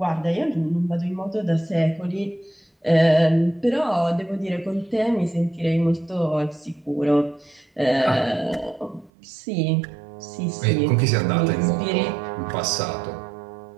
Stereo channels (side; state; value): left; drops out; at 9.1 s